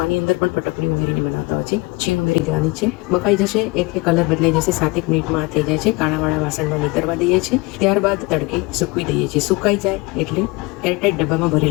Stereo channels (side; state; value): right; quieter; 25.1 dB